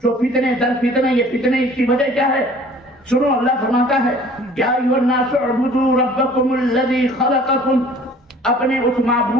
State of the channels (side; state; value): both; normal; correlation 0.50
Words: جو فتنے در فتنے، یہ فتنے اس کی وجہ کیا ہے؟ سنو، اللہ فرماتا ہے یا ایھا الناس اعبدوا ربکم الذی خلقکم، اپنے اس